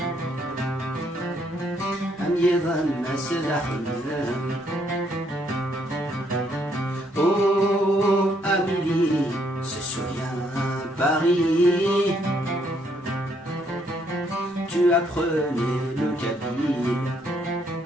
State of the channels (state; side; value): normal; both; correlation 0.71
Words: أم يظن سلاحهم Amélie se souvient Paris. Tu apprenais le kabyle.